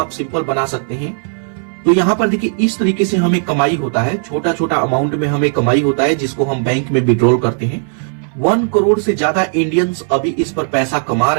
सिंपल बना सकते हैं। तो यहाँ पर देखिए इस तरीके से हमें कमाई होता है। छोटा छोटा अमाउंट में हमें कमाई होता है जिसको हम बैंक में विड्रॉल करते हैं। 1 करोड़ से ज्यादा इंडियंस अभी इस पर पैसा कमा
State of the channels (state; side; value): silent; left; 61 dB below the other